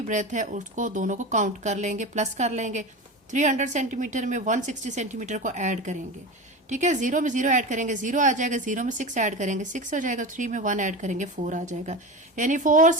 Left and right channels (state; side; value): normal; both; correlation 0.26